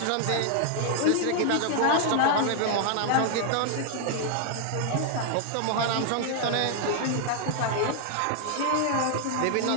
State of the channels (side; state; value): both; different; correlation 0.00